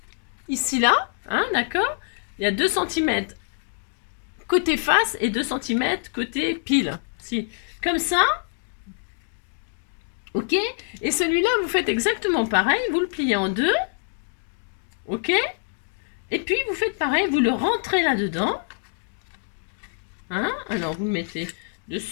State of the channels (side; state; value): right; silent; digital silence